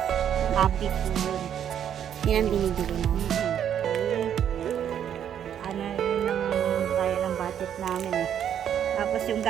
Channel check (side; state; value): left; quieter; 9.4 dB